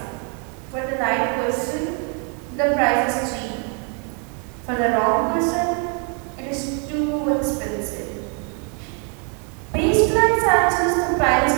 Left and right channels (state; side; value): quieter; left; 37.0 dB